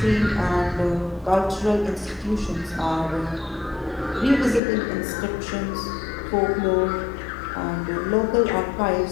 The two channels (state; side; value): drops out; right; at 4.6 s